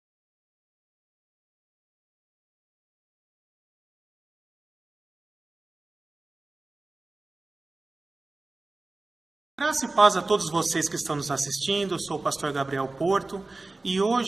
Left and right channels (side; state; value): left; quieter; 3.2 dB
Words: Graça e paz a todos vocês que estão nos assistindo. Eu sou o pastor Gabriel Porto e